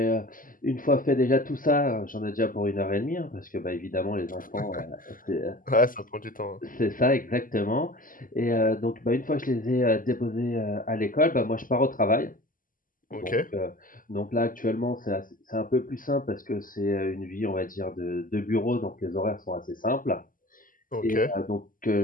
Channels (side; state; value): right; late; 0.40 ms